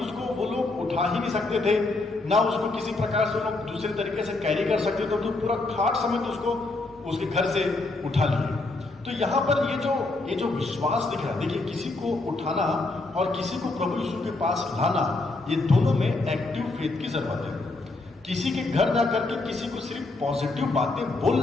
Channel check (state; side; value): quieter; right; 3.2 dB